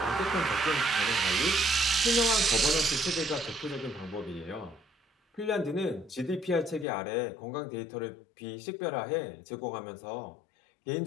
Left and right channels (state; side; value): drops out; right; at 6.9 s